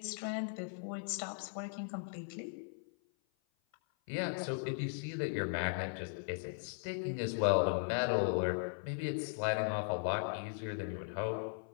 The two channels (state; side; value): silent; right; 52 dB below the other